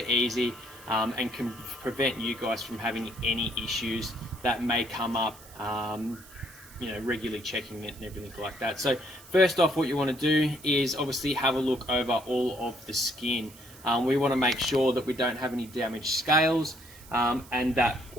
easy and can prevent you guys from having any issues that may come up. Regularly checking it and everything like that. So first off, what you want to do is obviously have a look over all of the skin. We want to make sure that we don't have any damaged scales and that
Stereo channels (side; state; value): right; noise; hiss, 21 dB below the sound